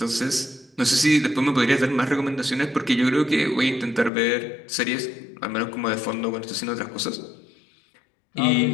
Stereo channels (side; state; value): right; drops out; at 4.1 s